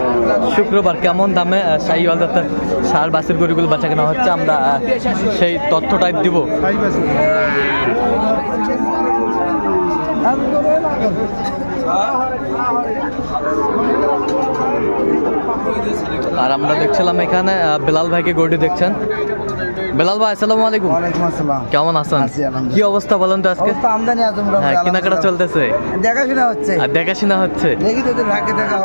শুক্রবার। কেমন দামে শাহিওয়াল জাতের ষাঁড় বাছুর গরুগুলো বাচ্চা কেনা হচ্ছে আমরা সেই তথ্যটাই দিব। আর আমরা দেখছিলাম এখানে বেলাল ভাইকে গরুটি দেখছেন। বেলাল ভাই আসসালামু আলাইকুম। ওয়ালাইকুম আসসালাম। কেমন আছেন? কি অবস্থা বলেন তো আজকে? আমদানি আছে, কেনাকাটা চলতেছে, দেখাশোনা হচ্ছে। আর দেখাশোনা হচ্ছে, দেখি তোদের ভাগ্যে দেখা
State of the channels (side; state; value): both; inverted; correlation -1.00